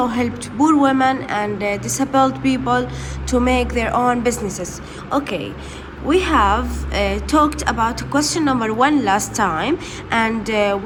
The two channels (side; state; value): both; identical; correlation 1.00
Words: helped poor women and disabled people to make their own businesses. Okay, we have talked about question number 1 last time, and